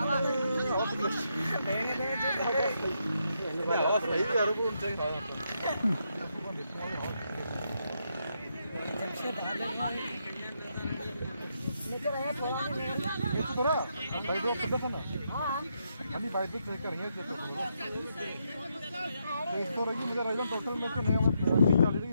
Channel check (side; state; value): both; inverted; correlation -0.79